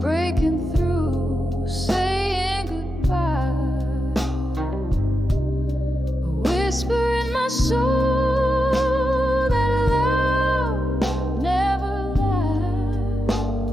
breaking through, saying goodbye. A whisper in my soul that love never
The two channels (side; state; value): both; normal; correlation 0.87